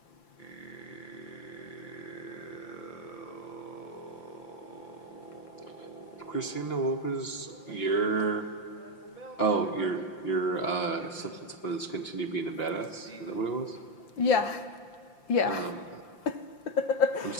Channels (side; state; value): right; late; 5.8 ms